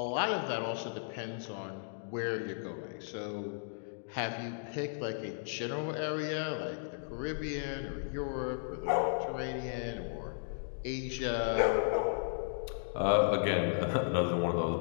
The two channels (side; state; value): right; silent; digital silence